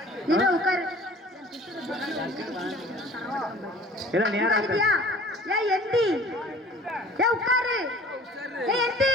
நீ உட்காரு எல்லாம் நேரா இருக்கியா ஏய் எந்தி ஏய் உட்காரு ஏய் எந்தி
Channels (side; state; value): both; normal; correlation 0.48